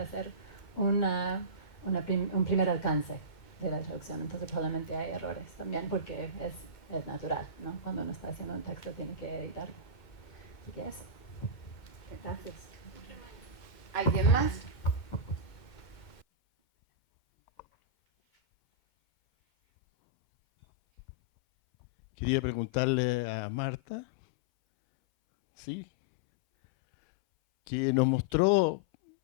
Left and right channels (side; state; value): right; late; 2.1 ms